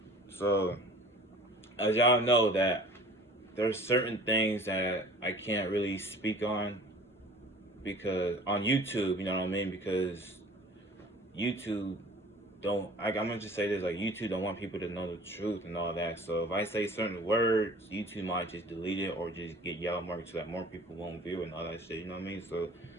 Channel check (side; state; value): both; normal; correlation 0.46